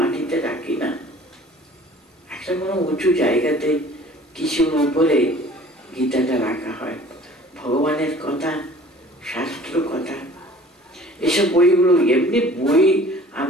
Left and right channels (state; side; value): normal; both; correlation 0.49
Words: রাখি না, একটা কোনো উঁচু জায়গাতে কিছুর উপরে গীতাটা রাখা হয়। ভগবানের কথা, শাস্ত্র কথা, এসব বইগুলো এমনি বই